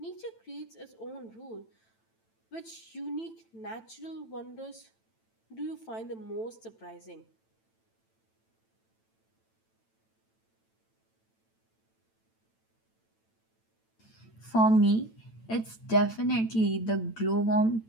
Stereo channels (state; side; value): late; right; 9.0 ms